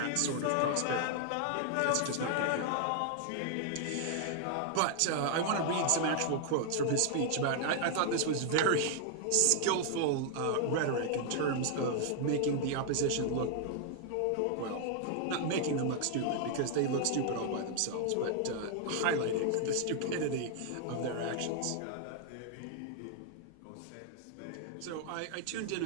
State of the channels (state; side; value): different; both; correlation 0.00